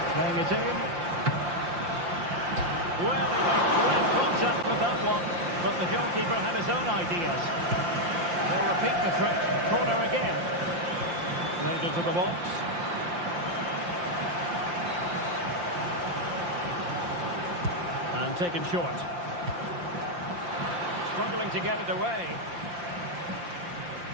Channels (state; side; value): late; left; 5.7 ms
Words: Playing it in. Well, he made direct contact with that one, but the goalkeeper had his own ideas. They'll repeat the trick. Corner again. Played into the box. And taken short. Struggling to get it away.